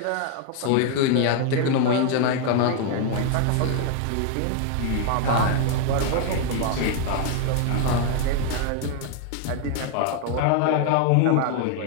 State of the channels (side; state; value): both; different; correlation 0.00